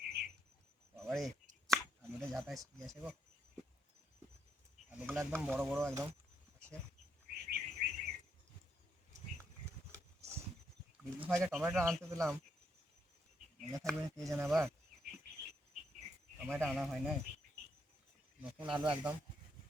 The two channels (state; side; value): normal; both; correlation 0.77